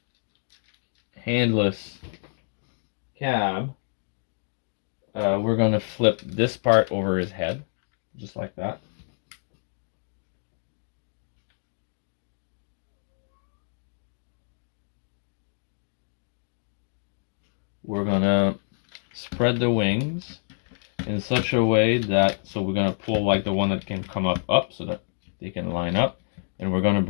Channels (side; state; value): right; silent; digital silence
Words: handless cab, we're going to flip this part over his head, just like that. We're going to spread the wings in such a way that, so we're going to pull like the one that can come up so that they can line up, and we're going to